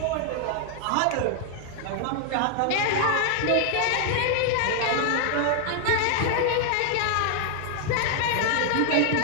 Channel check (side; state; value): both; different; correlation 0.00